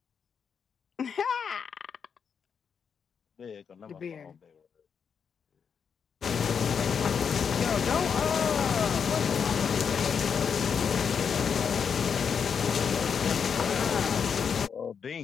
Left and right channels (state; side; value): quieter; right; 6.7 dB